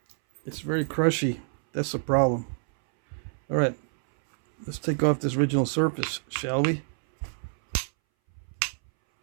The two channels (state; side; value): silent; left; 60 dB below the other